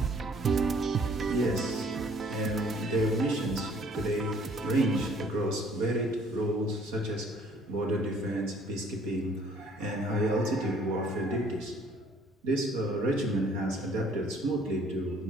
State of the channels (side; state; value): both; normal; correlation 0.58